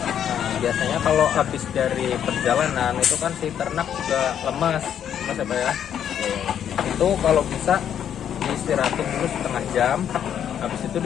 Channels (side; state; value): right; quieter; 9.3 dB